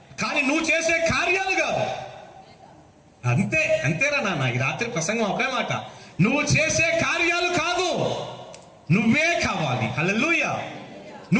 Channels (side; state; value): both; identical; correlation 1.00